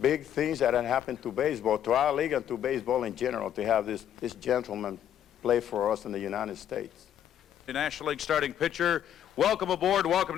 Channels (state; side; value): quieter; right; 10.2 dB